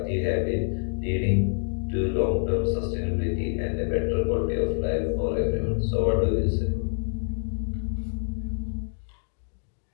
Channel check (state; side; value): silent; right; digital silence